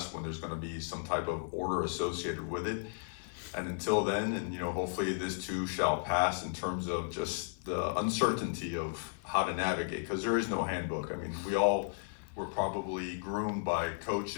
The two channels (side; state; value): right; silent; 55 dB below the other